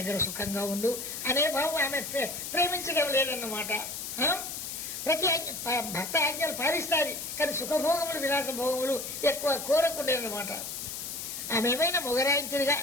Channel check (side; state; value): left; noise; hiss, 6 dB below the sound